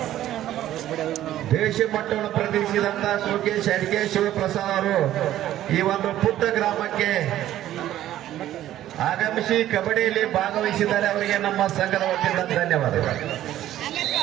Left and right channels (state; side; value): quieter; left; 13.0 dB